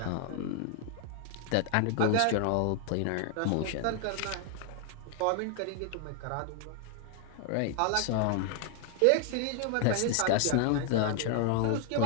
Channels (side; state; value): both; different; correlation 0.00